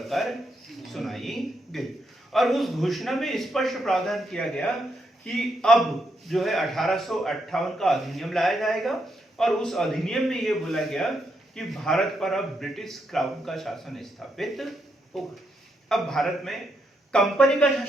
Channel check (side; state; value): both; normal; correlation 0.80